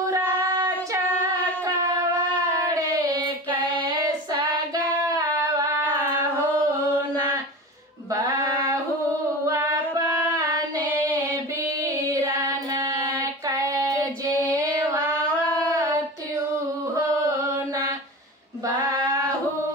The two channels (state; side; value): normal; both; correlation 0.31